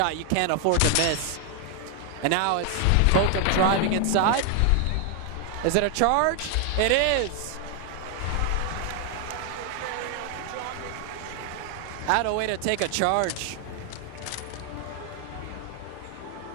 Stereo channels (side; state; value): both; different; correlation 0.00